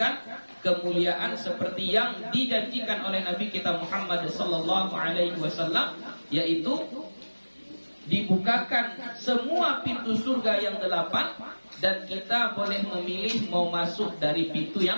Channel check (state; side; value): inverted; both; correlation -1.00